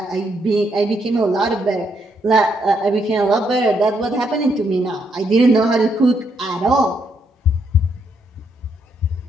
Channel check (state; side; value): normal; both; correlation 0.76